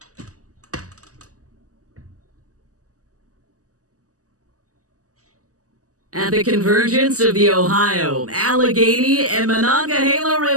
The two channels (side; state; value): left; late; 0.66 ms